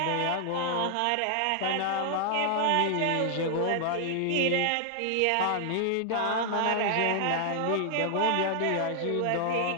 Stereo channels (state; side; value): different; both; correlation 0.00